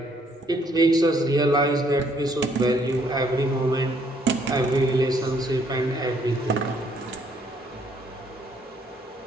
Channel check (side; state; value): both; normal; correlation 0.67